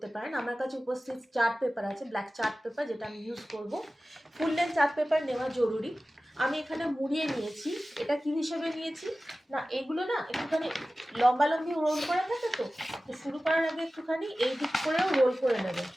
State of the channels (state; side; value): normal; both; correlation 0.96